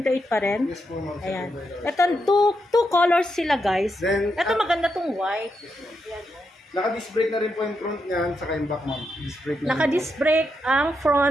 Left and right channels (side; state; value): both; normal; correlation 0.83